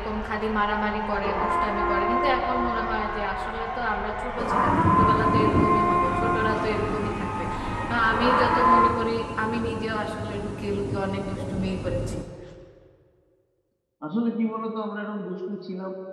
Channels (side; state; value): both; identical; correlation 1.00